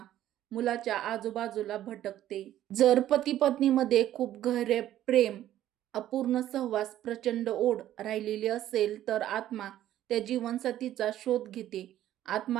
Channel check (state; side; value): quieter; left; 12.6 dB